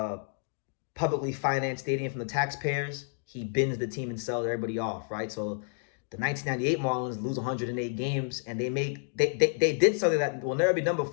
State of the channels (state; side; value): silent; right; 58 dB below the other